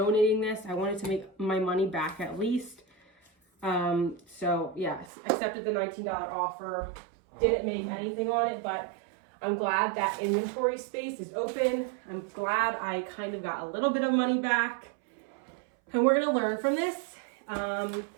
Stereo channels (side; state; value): left; drops out; at 5.1 s